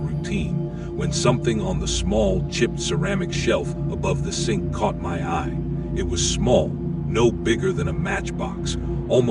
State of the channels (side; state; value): both; identical; correlation 1.00